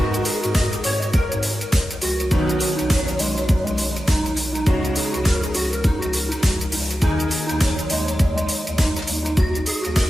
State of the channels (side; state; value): both; normal; correlation 0.92